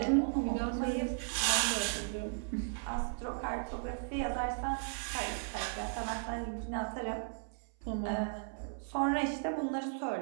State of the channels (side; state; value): left; silent; 54 dB below the other